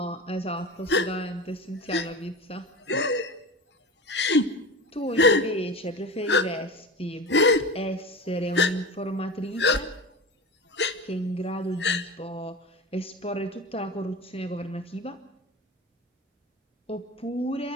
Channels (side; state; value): both; normal; correlation 0.29